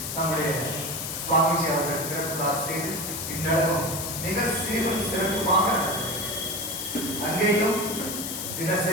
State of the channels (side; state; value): left; noise; hiss, 5 dB below the sound